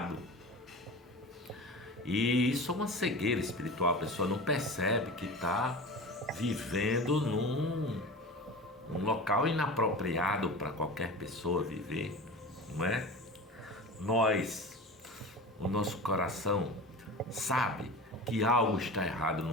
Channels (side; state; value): both; normal; correlation 0.32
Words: E isso é uma cegueira espiritual, a pessoa não percebe que está vivendo num local inapropriado para qualquer pessoa viver, não é? O nosso coração sabe que algo está errado no